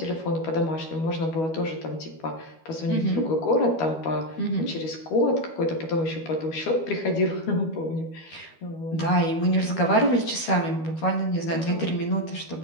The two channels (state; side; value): late; right; 12 ms